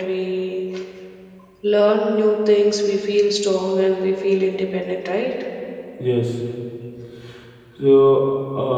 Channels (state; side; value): identical; both; correlation 1.00